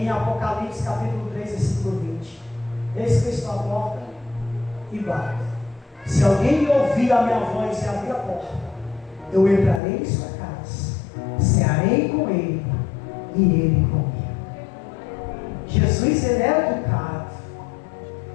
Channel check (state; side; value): drops out; right; at 9.8 s